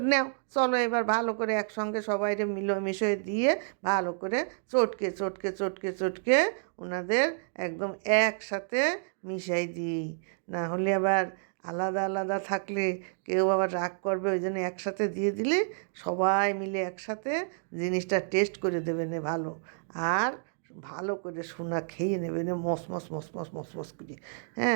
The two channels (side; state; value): left; silent; digital silence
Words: নাও চলো এবার ভালো করে একসঙ্গে সবাইরে মিশিয়ে দিয়ে ভালো করে চটকে চটকে চটকে চটকে ওনাদের একদম একসাথে মিশাই দিই। না হলে আবার আলাদা আলাদা থাকলে কেউ আবার রাগ করবে, ওই জন্য একসাথে দিয়ে দিলে সবাই মিলে একসাথে জিনিসটা টেস্ট করে দেবে নে ভালো। আর ভালো করে সোনা খেয়ে নেবে নে মস মস মস মস মস মস করে।